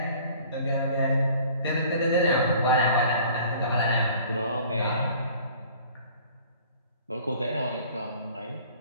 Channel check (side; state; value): both; inverted; correlation -0.50